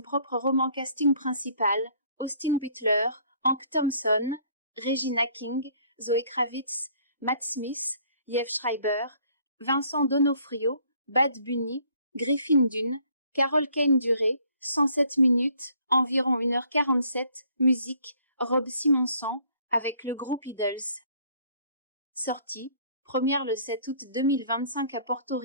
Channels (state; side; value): inverted; both; correlation -0.61